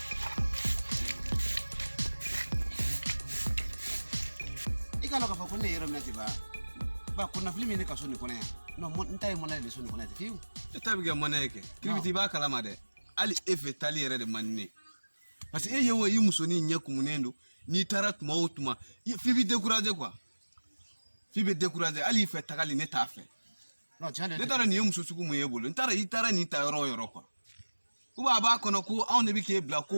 Kalau kau kau ni orang nanti ba kuna film ni kasuni kona ya no ntai mona le suni kona fiu tabi ga mona yake kribiti ba kalama de ali efe tali yere de manne parce que yewo yi musoni nyaku munendo ni tarat mautuma fibi décourager quoi fibi décourager ali fe tagali ne tafe no chane ne tara ni muso suku mu yebolo ntara itara ni ta yoro quoi uba ba kono ko on ne bi ke bla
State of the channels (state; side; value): inverted; both; correlation -1.00